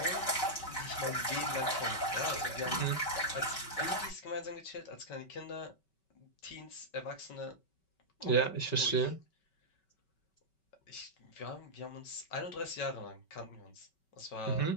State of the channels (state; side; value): late; right; 5.3 ms